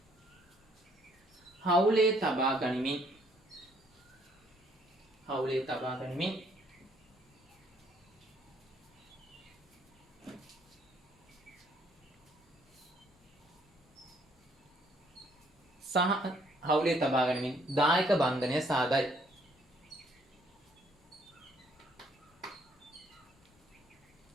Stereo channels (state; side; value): normal; both; correlation 0.65